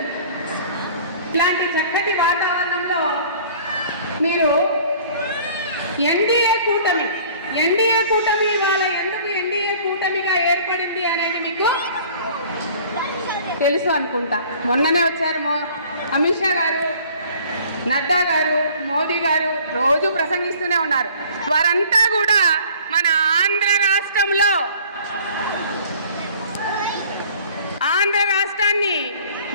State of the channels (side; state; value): both; inverted; correlation -0.50